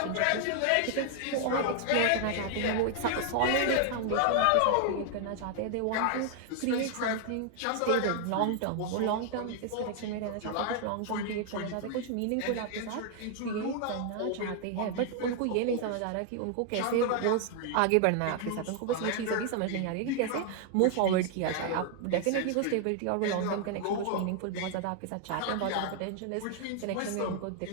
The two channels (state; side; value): different; both; correlation 0.00